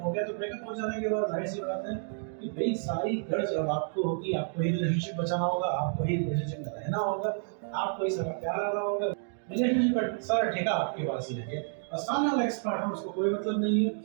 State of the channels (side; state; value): left; silent; 58 dB below the other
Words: हो गया, तो ब्रेकअप हो जाने के बाद जाहिर सी बात है कि भाई सारी गर्ज अब आपको होगी, आपको ही रिलेशनशिप बचाना होगा, आपको ही रिलेशनशिप में रहना होगा, आपको ही सारा प्यार आना होगा, रिलेशनशिप का सारा ठेका आपके पास ही है। और सामने वाला एक्स पार्टनर, उसको कोई मतलब नहीं है,